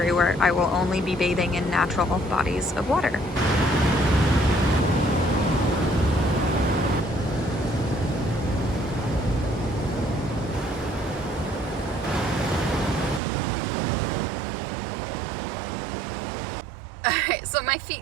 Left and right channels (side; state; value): left; drops out; at 13.2 s